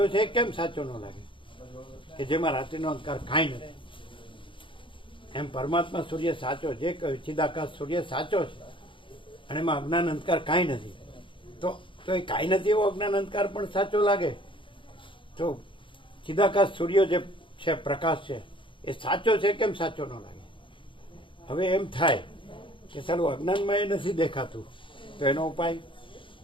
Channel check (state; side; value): late; right; 0.25 ms